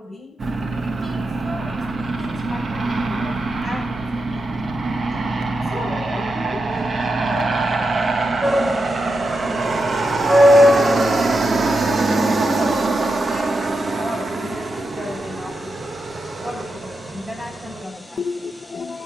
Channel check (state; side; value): normal; both; correlation 0.87